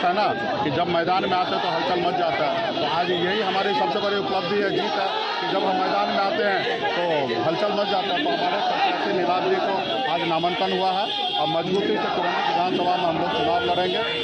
है ना कि जब मैदान में आते हैं तो हलचल मच जाता है। तो आज यही हमारी सबसे बड़ी उपलब्धि है, जीत है कि जब हम मैदान में आते हैं तो हलचल मच जाता है। तो हमारे प्रत्याशी नीलाभ जी को आज नामांकन हुआ है और मजबूती से कुरहनी विधानसभा में हम लोग चुनाव लड़ेंगे।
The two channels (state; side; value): identical; both; correlation 1.00